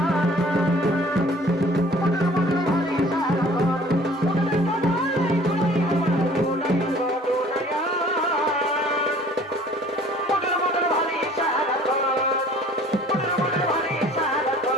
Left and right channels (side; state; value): both; normal; correlation 0.51